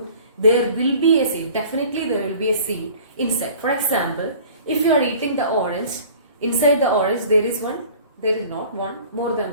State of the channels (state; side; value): inverted; both; correlation -0.47